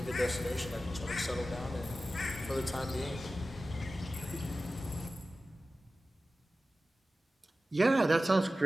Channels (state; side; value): normal; both; correlation 0.95